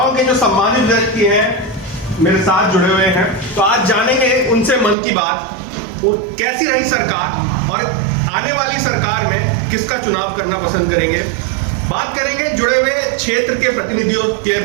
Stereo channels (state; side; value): drops out; left; at 5.0 s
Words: के जो सम्मानित व्यक्ति हैं मेरे साथ जुड़े हुए हैं। तो आज जानेंगे उनसे मन की बात, वो कैसी रही सरकार और आने वाली सरकार में किसका चुनाव करना पसंद करेंगे। बात करेंगे जुड़े हुए क्षेत्र के प्रतिनिधियों के